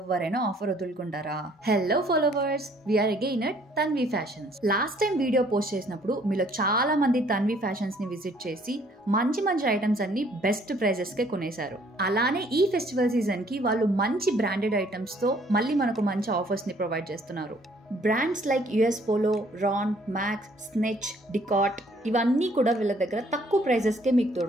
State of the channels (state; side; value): normal; both; correlation 0.61